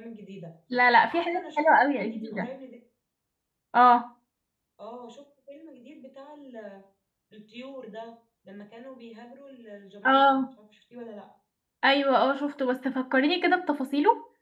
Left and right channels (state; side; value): identical; both; correlation 1.00